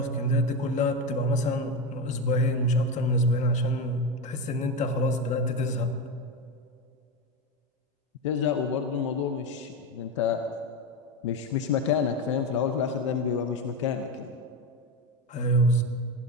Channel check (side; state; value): both; normal; correlation 0.16